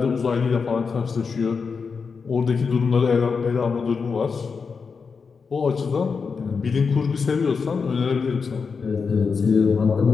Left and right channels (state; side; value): quieter; right; 5.3 dB